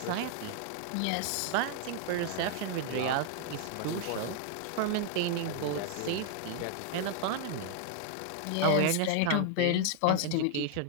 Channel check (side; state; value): both; different; correlation 0.00